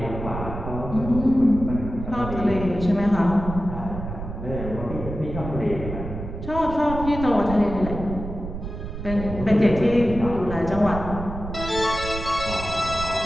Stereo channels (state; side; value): noise; right; rumble, 8 dB below the sound